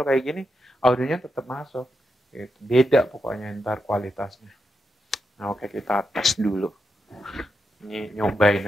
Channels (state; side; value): normal; both; correlation 0.85